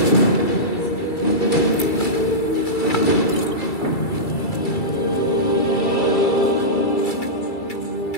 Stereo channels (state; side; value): late; right; 2.3 ms